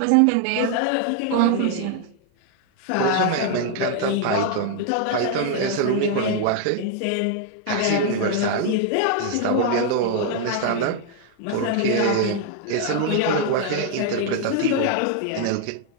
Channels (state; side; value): different; both; correlation 0.00